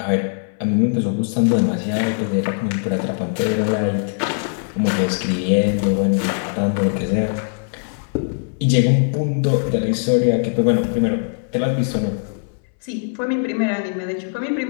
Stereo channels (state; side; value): silent; right; 65 dB below the other